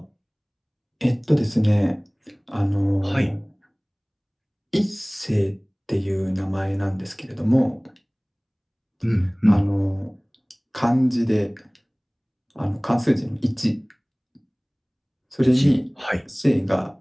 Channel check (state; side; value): identical; both; correlation 1.00